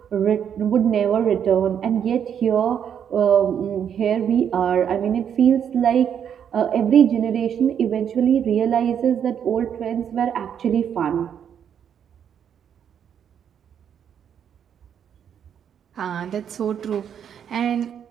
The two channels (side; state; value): left; quieter; 8.5 dB